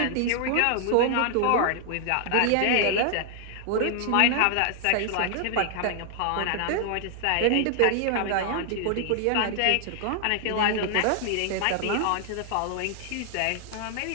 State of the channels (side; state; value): both; different; correlation 0.00